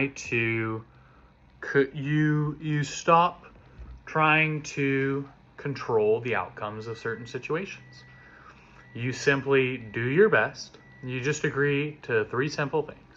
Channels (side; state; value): both; identical; correlation 1.00